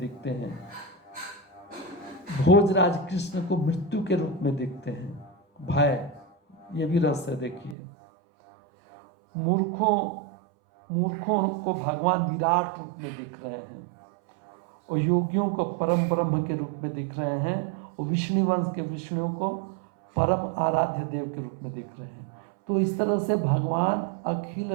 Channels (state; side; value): drops out; left; at 7.8 s